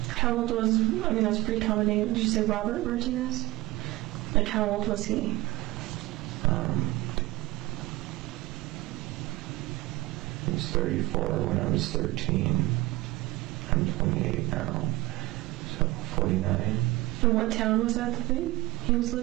How old was, that's a pretty common name. Did you say Robert Martinez? Like, how old was he? He was 34 when I was 13. I'm 28 now, so 49. And what town was that he was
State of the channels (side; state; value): left; quieter; 20.0 dB